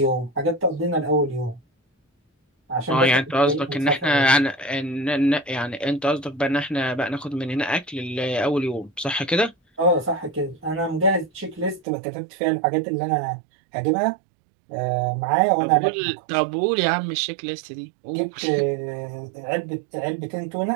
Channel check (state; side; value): drops out; left; at 11.9 s